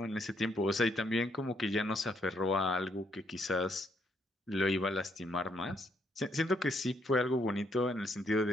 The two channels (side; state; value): both; normal; correlation 0.72